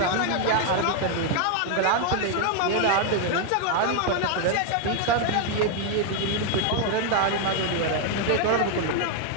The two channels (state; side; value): different; both; correlation 0.00